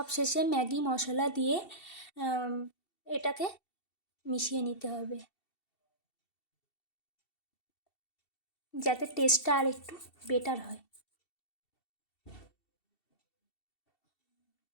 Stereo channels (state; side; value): late; right; 2.7 ms